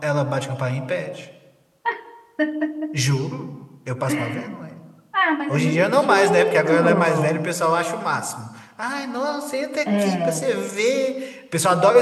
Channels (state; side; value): identical; both; correlation 1.00